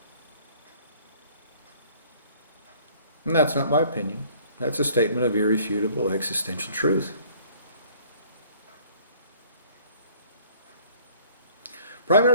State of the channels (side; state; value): both; inverted; correlation -0.56